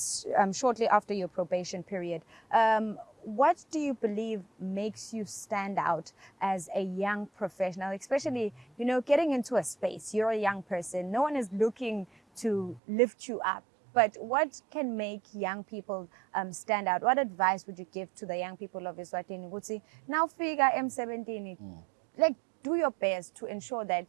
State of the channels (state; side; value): drops out; left; at 12.8 s